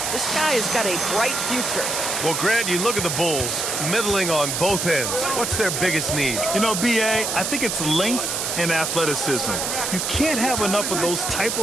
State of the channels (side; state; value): right; noise; hiss, 1 dB below the sound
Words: This guy has got a bright future. Well, Grant, you look at the Bulls, middling on both ends. What's their biggest need? You know, B.A., I think it's length and athleticism. You can't have enough of those type